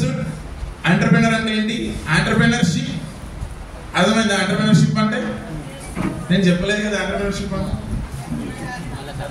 entrepreneur అంటే ఏంటి, ఎంటర్‌ప్రెన్యూర్‌షిప్. అర్థమైందా ఎంటర్‌ప్రెన్యూర్‌షిప్ అంటే? నేను చెప్పలేదు కదా ఎంటర్‌ప్రెన్యూర్‌షిప్ అంటే.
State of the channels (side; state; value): both; identical; correlation 1.00